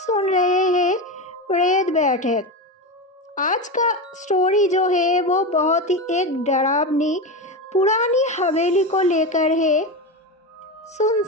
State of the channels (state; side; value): normal; both; correlation 0.19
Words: रहे हैं प्रेत बैठक। आज का स्टोरी जो है वो बहुत ही एक डरावनी पुरानी हवेली को लेकर है।